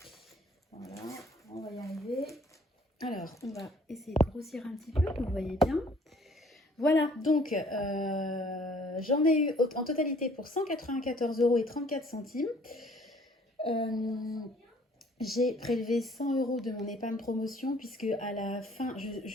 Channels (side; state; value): both; normal; correlation 0.57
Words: Voilà, on va y arriver. Alors, on va essayer de grossir un petit peu, vous voyez bien. Voilà, donc j'en ai eu en totalité pour 194,34 €. J'ai prélevé 100 € de mon épargne promotion puisque à la fin,